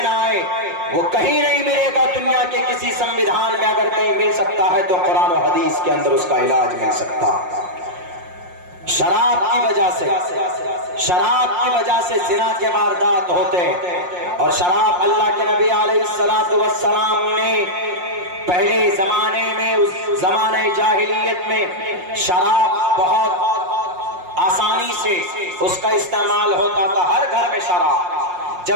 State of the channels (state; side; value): late; left; 5.6 ms